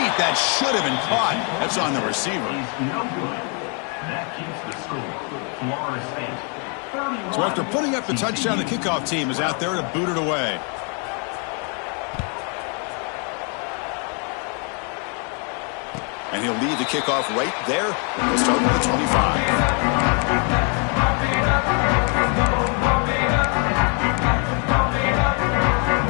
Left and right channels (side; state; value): right; quieter; 38.0 dB